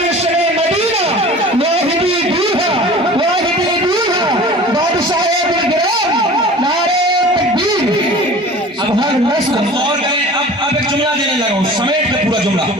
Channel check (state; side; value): normal; both; correlation 0.41